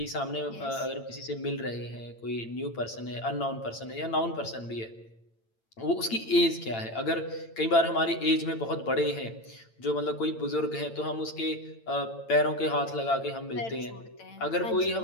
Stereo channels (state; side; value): late; right; 8.9 ms